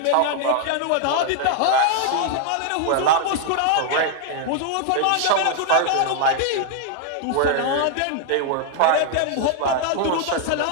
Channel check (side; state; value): both; different; correlation 0.00